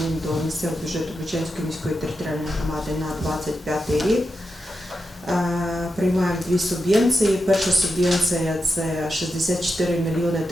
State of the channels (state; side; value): normal; both; correlation 0.88